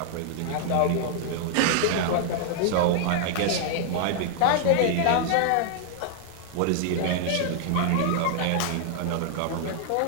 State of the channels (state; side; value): different; both; correlation 0.00